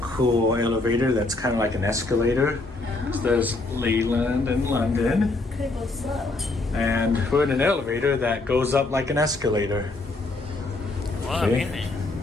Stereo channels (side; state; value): right; quieter; 3.2 dB